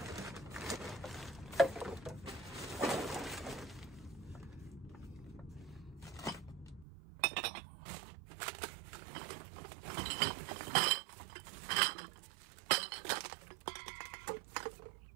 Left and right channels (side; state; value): left; drops out; at 6.9 s